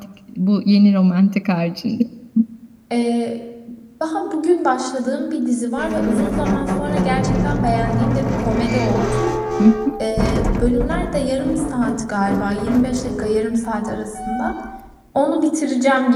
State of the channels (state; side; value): identical; both; correlation 1.00